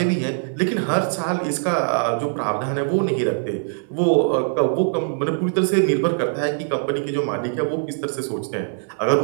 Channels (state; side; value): silent; left; 64 dB below the other